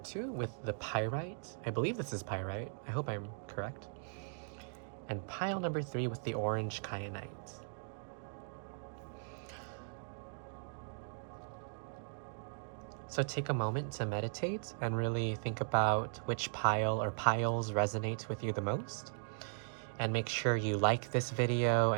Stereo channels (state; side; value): silent; left; digital silence